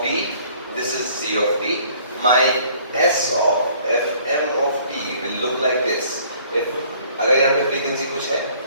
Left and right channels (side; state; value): both; inverted; correlation -0.57